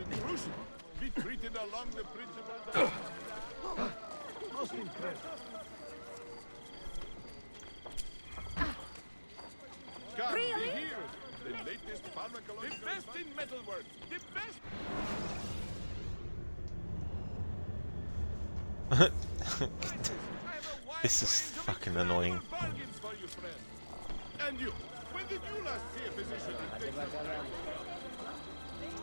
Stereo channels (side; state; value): both; inverted; correlation -1.00